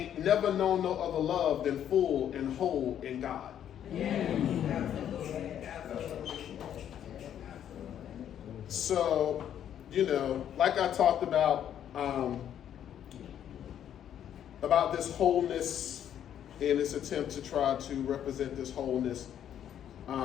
never known no other love than full and whole in God. So, like I talked about this wholeness in this attempt to try to represent this wholeness,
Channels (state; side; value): quieter; right; 10.0 dB